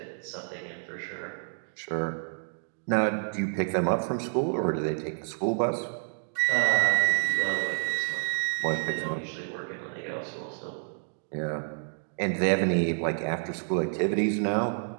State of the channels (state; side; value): silent; left; digital silence